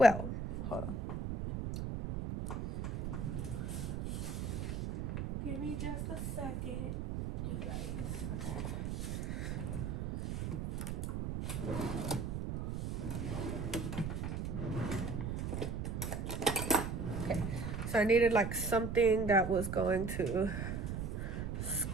hold on. Give me just a second, you guys. Okay, so I needed like something that was going to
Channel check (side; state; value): right; noise; rumble, 3 dB below the sound